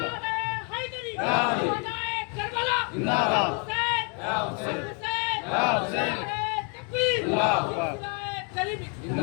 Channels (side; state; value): right; quieter; 37.1 dB